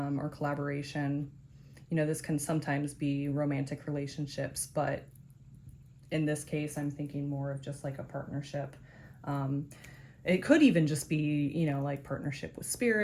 collaboration. You know, this can sometimes be romantic relationships, but in this case, I'm thinking more of just like a partnership. It could even just be, you know, like partnership with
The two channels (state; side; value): identical; both; correlation 1.00